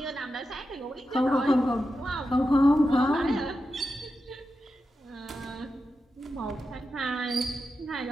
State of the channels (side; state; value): both; normal; correlation 0.90